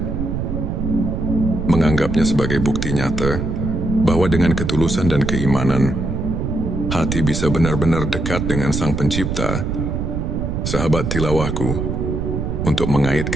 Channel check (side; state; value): right; noise; rumble, 2 dB below the sound